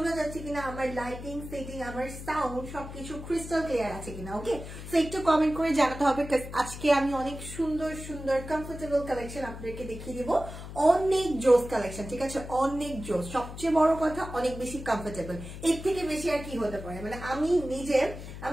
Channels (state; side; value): noise; left; hum, 11 dB below the sound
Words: যাচ্ছে কিনা, আমার লাইটিং সেটিং, আমার সাউন্ড সবকিছু ক্রিস্টাল ক্লিয়ার আছে কিনা। ওকে, সো একটু কমেন্ট করে জানাতে হবে। আজকে আমি অনেক সুন্দর সুন্দর কমফোর্টেবল কালেকশন আপনাদেরকে দেখিয়ে দিব, অনেক জোস কালেকশন, ঠিক আছে? অনেক জোস, সবচেয়ে বড় কথা অনেক বেশি কমফোর্টেবল। এর থেকে বেশি আর কি হতে পারে? মানে